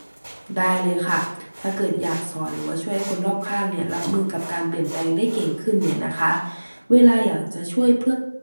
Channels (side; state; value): both; inverted; correlation -1.00